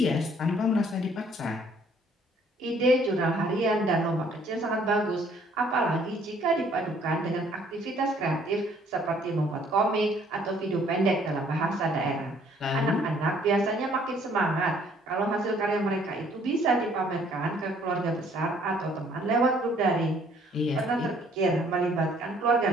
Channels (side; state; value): both; normal; correlation 0.61